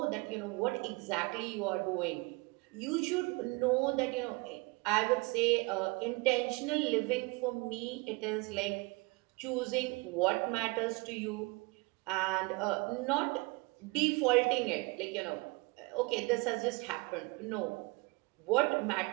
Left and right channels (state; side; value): quieter; left; 27.0 dB